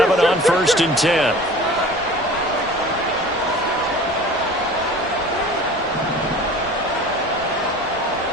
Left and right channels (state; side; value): normal; both; correlation 0.41